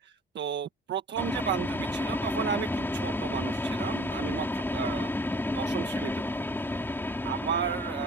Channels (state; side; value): normal; both; correlation 0.52